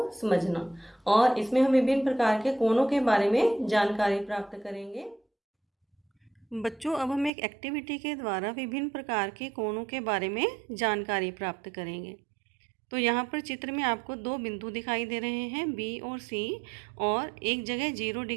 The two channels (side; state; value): left; drops out; at 7.3 s